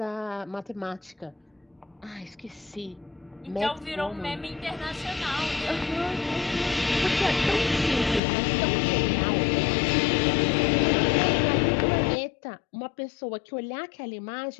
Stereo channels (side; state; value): right; drops out; at 8.2 s